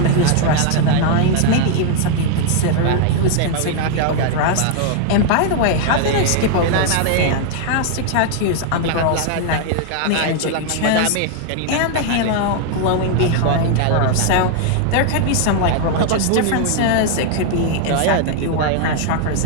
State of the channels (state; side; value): different; both; correlation 0.00